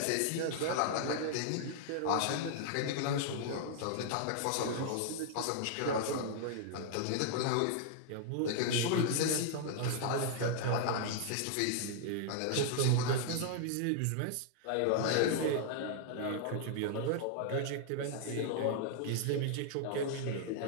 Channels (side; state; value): both; different; correlation -0.01